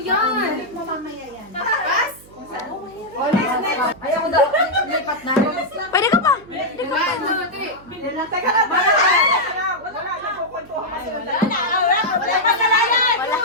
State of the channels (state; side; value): noise; right; hum, 23 dB below the sound